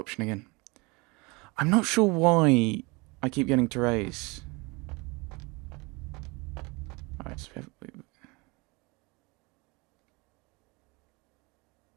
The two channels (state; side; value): quieter; left; 26.7 dB